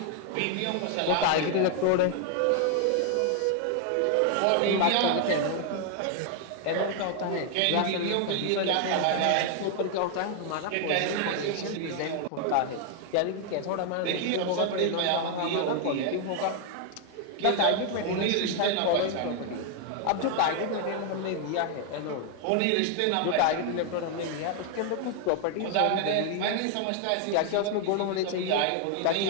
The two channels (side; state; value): both; different; correlation 0.00